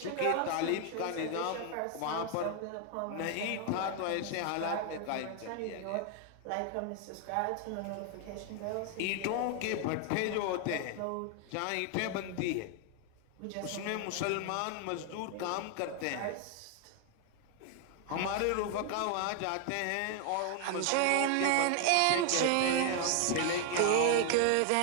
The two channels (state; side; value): different; both; correlation 0.00